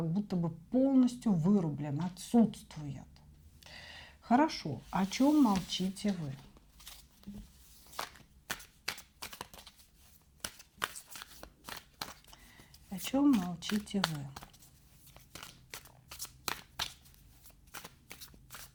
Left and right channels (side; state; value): both; identical; correlation 1.00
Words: будто бы полностью вырублен, отсутствует. Хорошо, о чем молчите вы? О чем молчите вы?